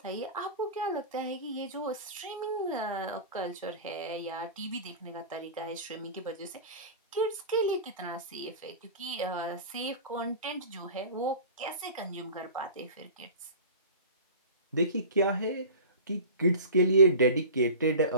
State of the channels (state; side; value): inverted; both; correlation -0.35